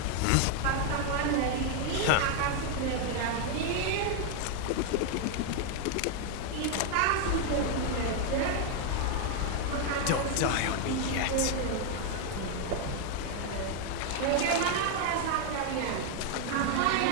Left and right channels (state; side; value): different; both; correlation 0.00